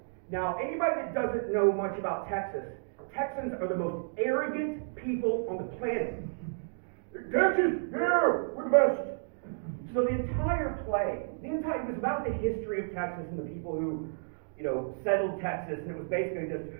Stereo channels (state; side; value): silent; left; digital silence